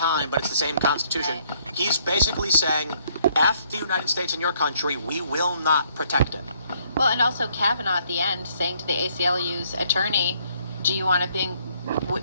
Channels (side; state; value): both; inverted; correlation -0.66